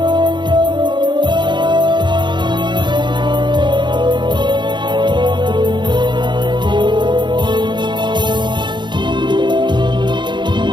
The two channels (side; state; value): left; late; 0.22 ms